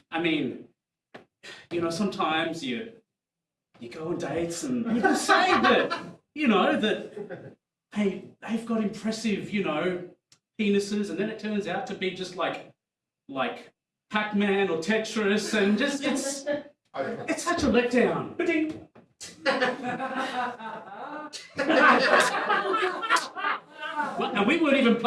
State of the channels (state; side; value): identical; both; correlation 1.00